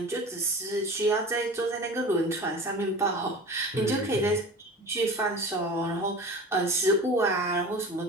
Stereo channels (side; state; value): both; normal; correlation 0.36